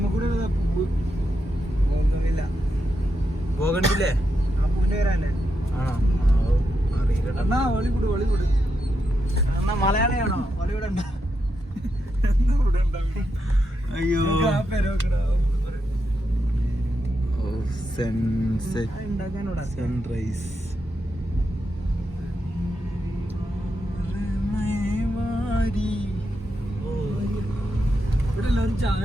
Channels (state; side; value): normal; both; correlation 0.84